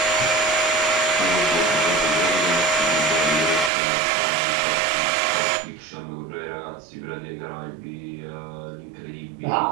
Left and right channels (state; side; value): drops out; left; at 3.7 s